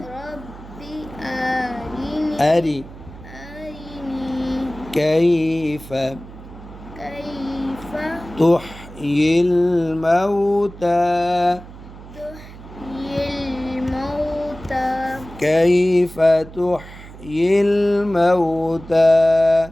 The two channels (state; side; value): noise; right; hum, 16 dB below the sound